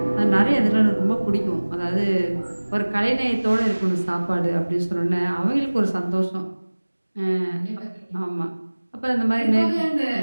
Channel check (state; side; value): inverted; both; correlation -1.00